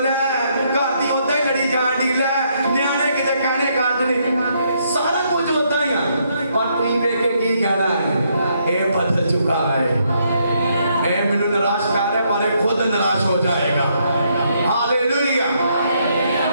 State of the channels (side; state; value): both; inverted; correlation -0.74